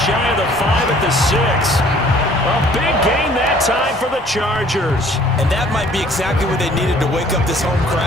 shy of the 5 at the 6. A big gain that time for the Chargers. And that might be exactly what they needed to wake up this home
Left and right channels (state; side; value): normal; both; correlation 0.56